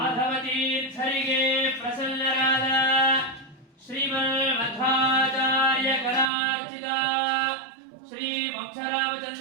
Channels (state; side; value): drops out; left; at 6.3 s